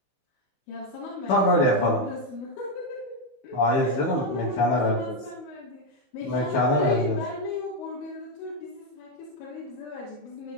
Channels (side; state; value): right; late; 15 ms